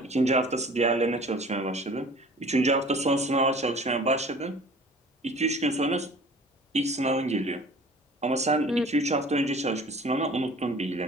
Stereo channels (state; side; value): normal; both; correlation 0.46